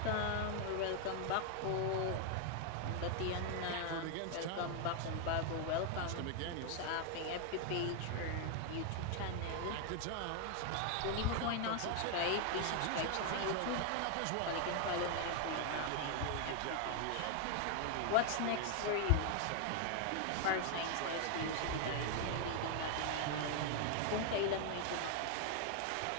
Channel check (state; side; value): different; both; correlation 0.00